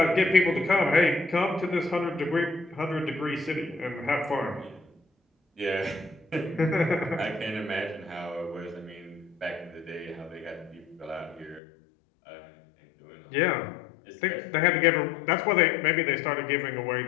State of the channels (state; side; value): drops out; right; at 11.6 s